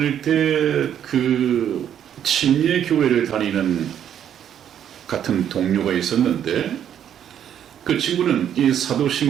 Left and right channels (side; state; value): left; quieter; 9.6 dB